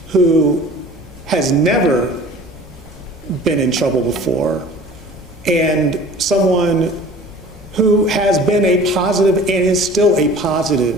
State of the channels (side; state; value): both; normal; correlation 0.45